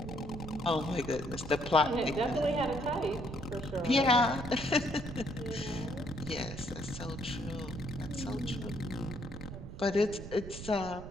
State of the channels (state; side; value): noise; right; rumble, 10 dB below the sound